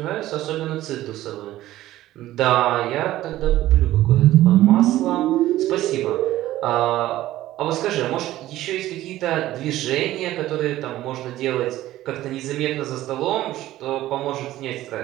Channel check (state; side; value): quieter; left; 15.0 dB